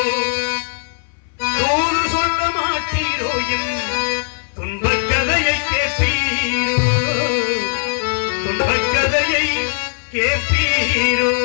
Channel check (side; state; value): right; silent; 61 dB below the other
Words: தூது சொல்ல மாட்டீரோ, என் துன்பக் கதையை கேட்பீரோ, துன்பக் கதையை கேட்பீரோ.